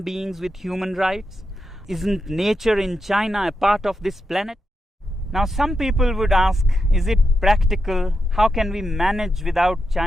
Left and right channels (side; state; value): both; normal; correlation 0.86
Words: beings with human rights? Isn't nature in China a part of this planet? Now, some people would ask, is it practical? How can we manage without